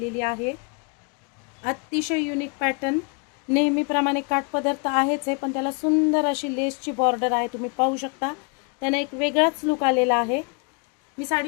आहे। अतिशय युनिक पॅटर्न, नेहमीप्रमाणे काठपदर तर आहेच आहे, पण त्याला सुंदर अशी लेसची बॉर्डर आहे। तुम्ही पाहू शकता त्याने एक वेगळाच लुक आलेला आहे। मी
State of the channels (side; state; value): right; quieter; 35.1 dB